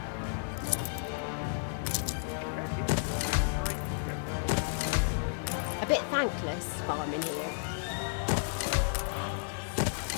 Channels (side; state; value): right; silent; digital silence